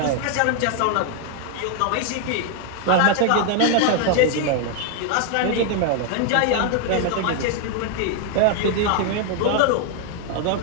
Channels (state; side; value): different; both; correlation 0.00